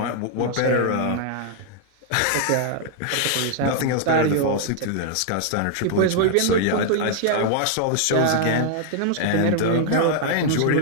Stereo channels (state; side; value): different; both; correlation 0.00